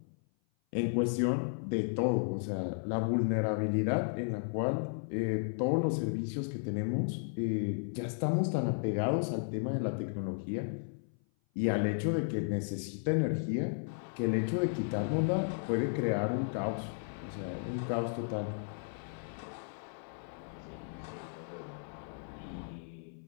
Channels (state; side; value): silent; right; 55 dB below the other